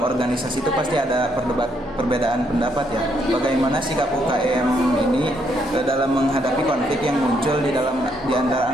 itu pasti ada perbedaan pendapat ya. Bagaimana sikap UKM ini dalam menghadapi konflik yang muncul di antara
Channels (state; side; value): normal; both; correlation 0.73